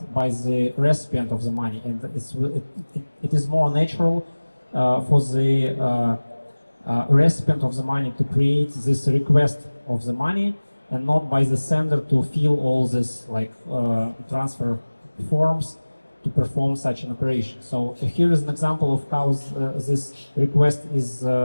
by the recipient of the money. And it is more natural for the recipient of the money to create this request of the money, and not by the sender to fill all this like transfer forms to perform such an operation. So here is an example of how this request is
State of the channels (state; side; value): inverted; both; correlation -1.00